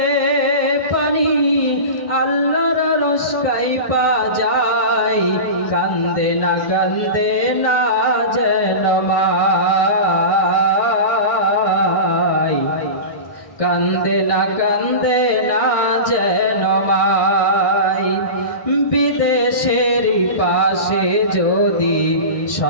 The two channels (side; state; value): right; late; 1.6 ms